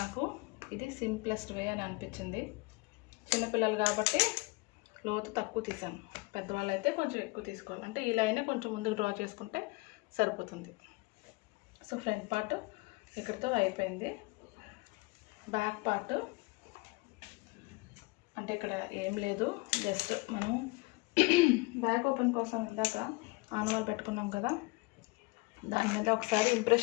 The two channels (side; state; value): right; quieter; 25.2 dB